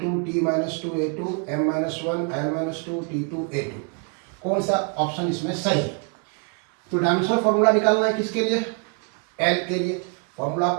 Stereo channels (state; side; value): quieter; left; 37.0 dB